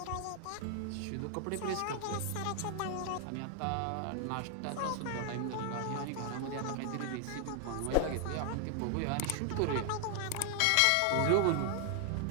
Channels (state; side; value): different; both; correlation 0.00